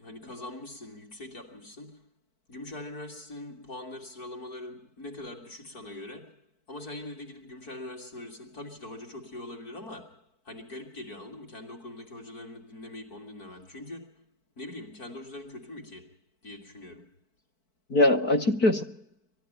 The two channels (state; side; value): late; right; 4.6 ms